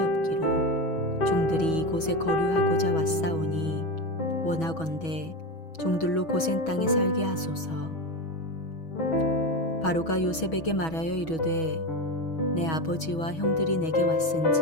종들이 이곳에 거류하고자 왔사오니 원하건대 종들로 고센 땅에 살게 하소서. 바로가 요셉에게 말하여 이르되 내 아버지와 형들이 내게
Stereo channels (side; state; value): right; late; 6.2 ms